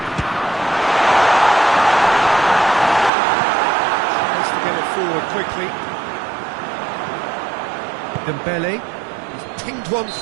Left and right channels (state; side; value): drops out; left; at 3.1 s